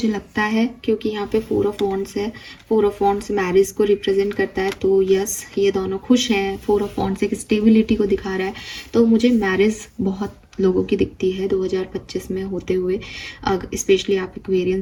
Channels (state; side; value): identical; both; correlation 1.00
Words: लगता है, क्योंकि यहाँ पे 4 ऑफ वॉन्ड्स है, 4 ऑफ वॉन्ड्स मैरिज को रिप्रेजेंट करता है, तो यस ये दोनों खुश हैं। 4 ऑफ वॉन्ड्स एक स्टेबिलिटी को दिखा रहा है, तो मुझे मैरिज बहुत लोगों की दिखती है 2025 में होते हुए। स्पेशली आप